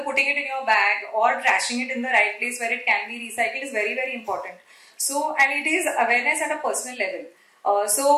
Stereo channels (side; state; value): both; identical; correlation 1.00